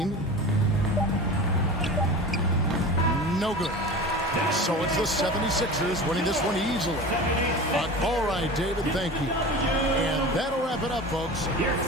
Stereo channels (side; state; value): both; normal; correlation 0.33